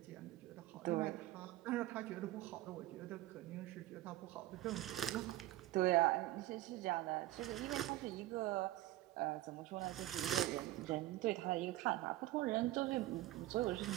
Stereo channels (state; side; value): quieter; left; 16.1 dB